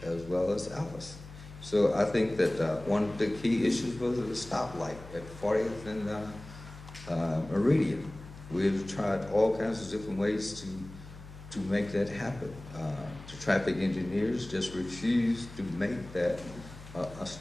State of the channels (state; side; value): noise; left; hum, 16 dB below the sound